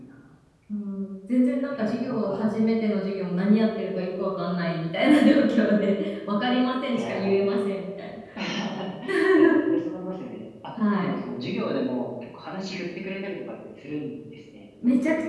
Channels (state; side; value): identical; both; correlation 1.00